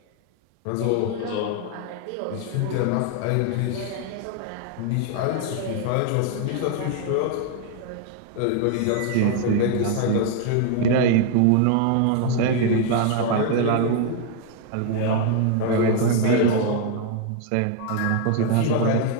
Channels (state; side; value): different; both; correlation 0.00